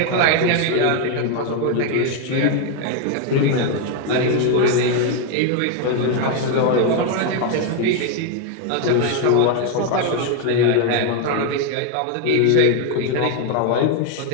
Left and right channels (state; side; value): different; both; correlation 0.01